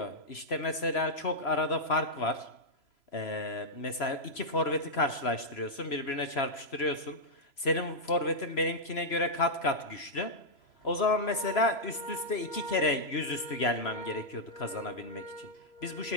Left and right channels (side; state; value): right; late; 3.0 ms